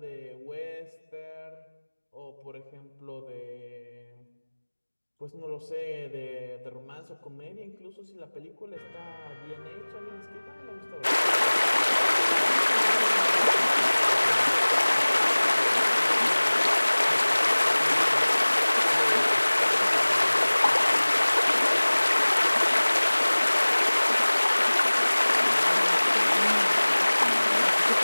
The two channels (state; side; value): inverted; both; correlation -1.00